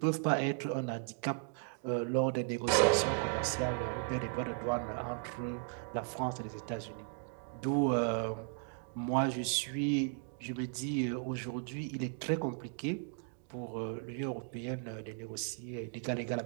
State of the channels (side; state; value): left; silent; 54 dB below the other